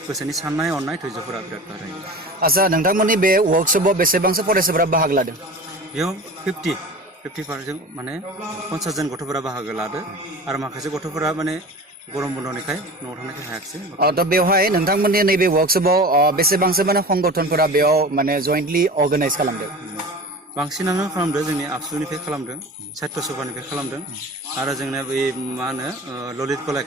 गोसोनि साननाय हनाय धैर्यफोरा बिराद बारायो आच्छा नोंथांमोननि बे वर्कशपआव बेसेबांसो फरायसाफोरा बाहागो लादों बेयाव 50% माने 50 जन गथ'फोरा बाहागो लादो आरो माखासे गथ'फोरा माने गरम बन्दनिखाय न'आव थांनायखाय हायाखिसै दा बेवहाय नोंथांमोननि नैबे वर्कशपआव बेसेबांसो माने संगठनफोरा बेयाव माने जयेन्टलि अर्गानाइज खालामदों बांसिनानो खालामदों जोंनि आबसुनिफ्राय खालामदों साहित्य सभानिफ्राय खालामदों आरो जोंना बे मा होनो ललित कला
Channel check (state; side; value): normal; both; correlation 0.35